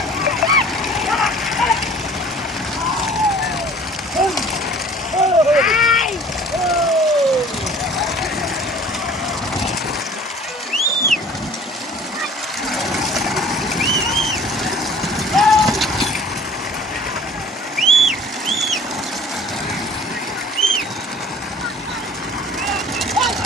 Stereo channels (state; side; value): normal; both; correlation 0.49